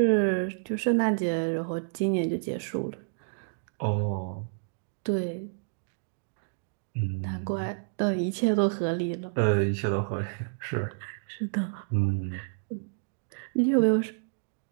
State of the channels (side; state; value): left; silent; digital silence